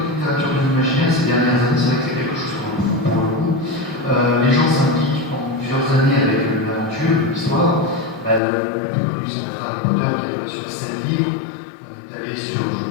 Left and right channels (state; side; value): drops out; right; at 8.4 s